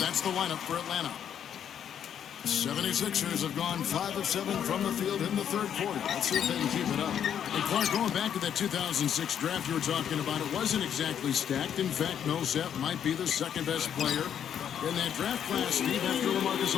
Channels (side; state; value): right; quieter; 9.0 dB